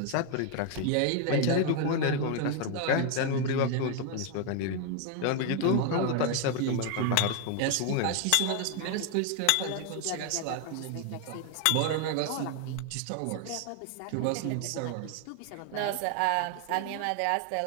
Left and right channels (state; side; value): different; both; correlation 0.01